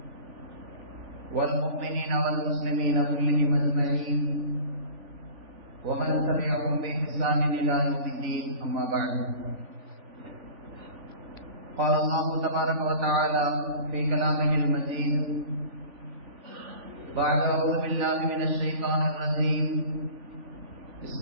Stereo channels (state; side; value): late; left; 3.5 ms